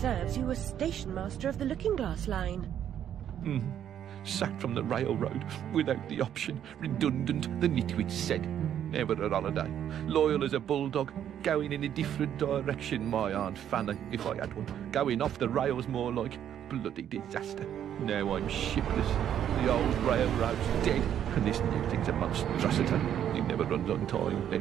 you were station master of the Looking Glass line. Sacked from the railroad without the option. Redundant, the nitwit said. Never a holiday. Loyal as a bulldog. Going in a different direction, my Aunt Fanny, if I had one. Going off the rails more like. Bloody disaster. Now I'm shipless. The old railroad's dead, and this new thing's a monstrosity. It never runs on time.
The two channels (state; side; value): quieter; left; 9.9 dB